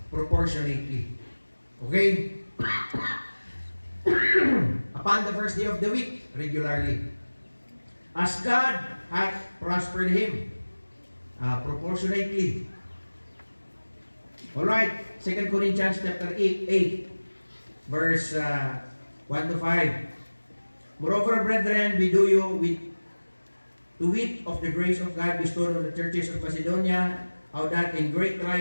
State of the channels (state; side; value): inverted; both; correlation -1.00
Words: proportionately. Okay? Upon the first day of the week, regularly. As God hath prospered him, proportionately. Alright, 2 Corinthians chapter 8, verse 1 to 5. Moreover, brethren, we do you to wit of the grace of God bestowed on the churches of Macedonia, how that in great